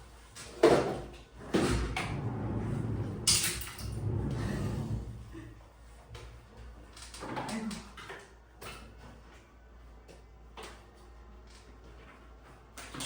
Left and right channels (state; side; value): identical; both; correlation 1.00